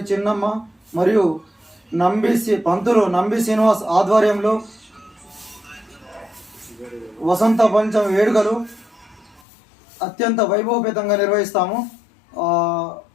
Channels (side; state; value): right; drops out; at 9.4 s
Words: చిన్నమ్మ మరియు పంతులు నంబి శ్రీనివాస్ ఆధ్వర్యంలో వసంత పంచమి వేడుకలు అత్యంత వైభవపేతంగా నిర్వహిస్తాము.